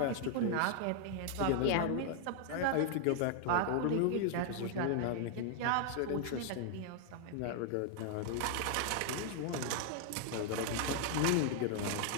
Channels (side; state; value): both; different; correlation 0.00